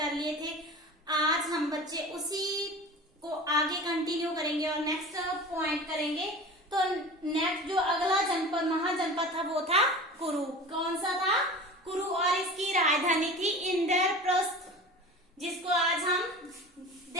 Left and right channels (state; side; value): normal; both; correlation 0.36